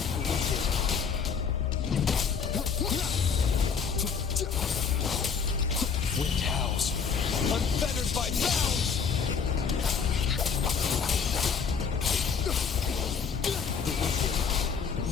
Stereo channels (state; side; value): quieter; right; 6.2 dB